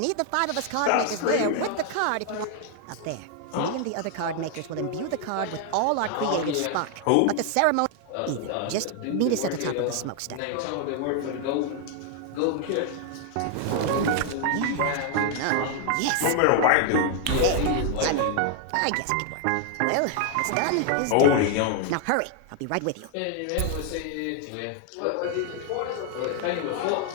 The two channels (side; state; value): both; different; correlation 0.00